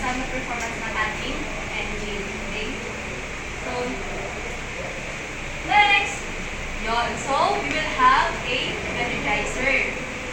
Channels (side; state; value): both; identical; correlation 1.00